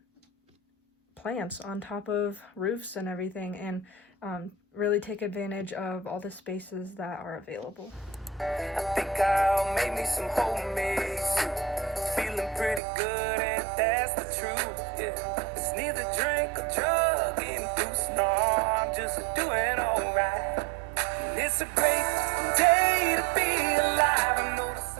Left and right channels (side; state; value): left; drops out; at 12.8 s